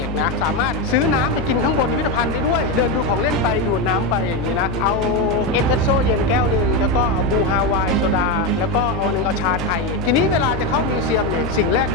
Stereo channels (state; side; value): noise; left; hum, 7 dB below the sound